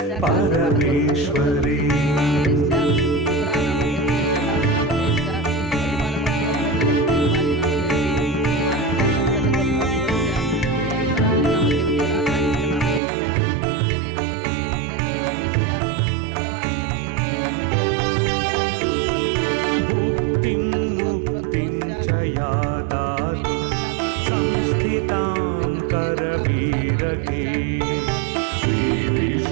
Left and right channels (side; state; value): left; drops out; at 13.0 s